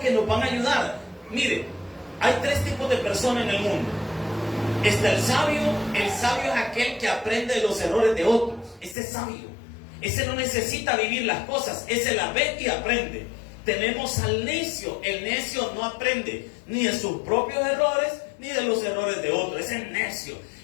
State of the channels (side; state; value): right; drops out; at 9.0 s